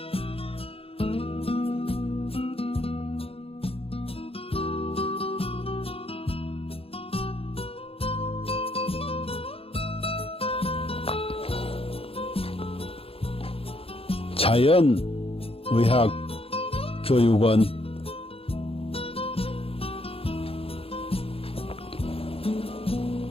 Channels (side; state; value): right; late; 0.27 ms